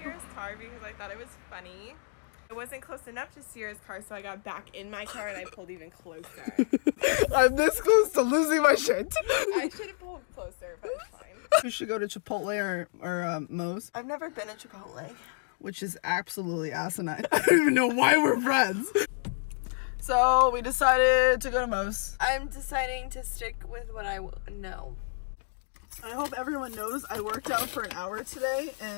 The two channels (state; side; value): silent; right; digital silence